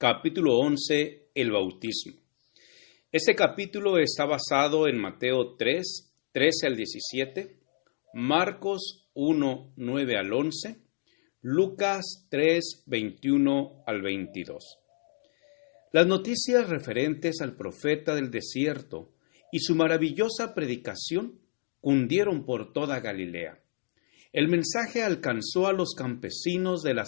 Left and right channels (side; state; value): right; silent; digital silence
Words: 11, el bautismo. Este capítulo está basado en Mateo 3, 13 al 17, Marcos 1, 9 al 11, Lucas 3, 21 al 22. Las noticias referentes al profeta del desierto y su maravillosa predicación cundieron por toda Galilea. El mensaje alcanzó a los campesinos de